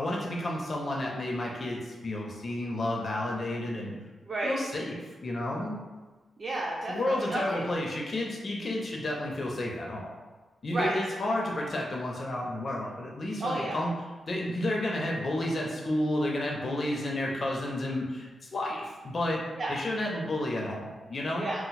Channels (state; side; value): normal; both; correlation 0.87